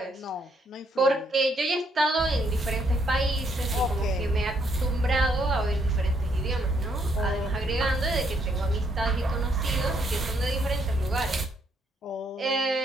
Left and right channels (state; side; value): normal; both; correlation 0.71